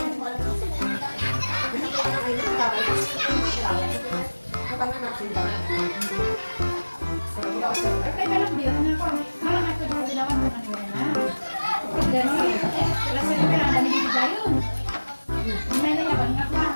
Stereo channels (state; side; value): inverted; both; correlation -1.00